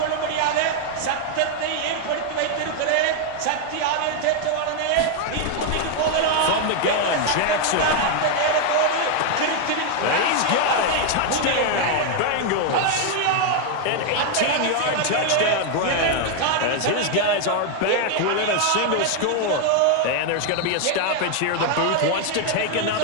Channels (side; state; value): both; different; correlation 0.01